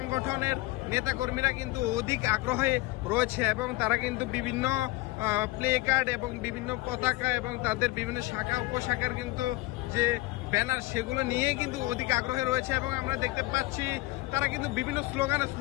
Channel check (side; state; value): right; quieter; 20.4 dB